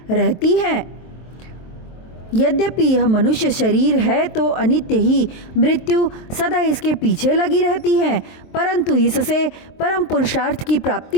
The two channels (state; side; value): late; right; 23 ms